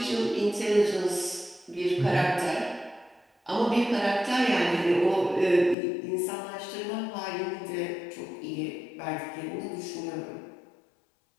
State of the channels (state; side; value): drops out; right; at 5.8 s